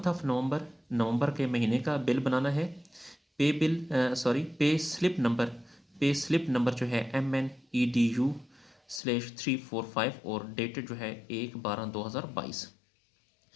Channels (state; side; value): drops out; right; at 9.0 s